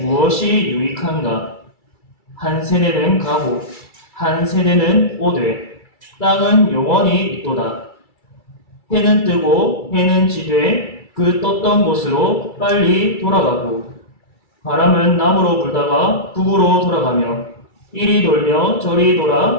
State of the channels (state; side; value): late; right; 2.3 ms